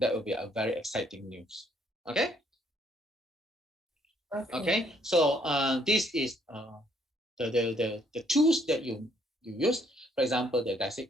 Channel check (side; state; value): both; normal; correlation 0.67